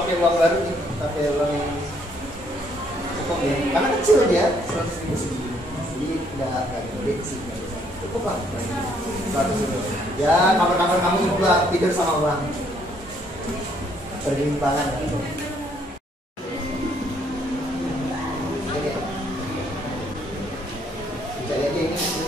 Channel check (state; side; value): normal; both; correlation 0.67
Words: pakai uang baru nih, pakai uang yang cukup ya. Karena kecil dia 100.000 segini. Jadi nggak gede sih. Cukup lah. 100.000. Ya kamar-kamar kamu cukup lah, tidur sama uang. Berlimpangan gitu. Cari aja ini